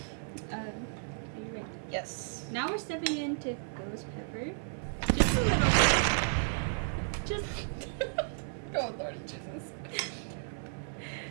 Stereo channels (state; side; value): silent; left; 55 dB below the other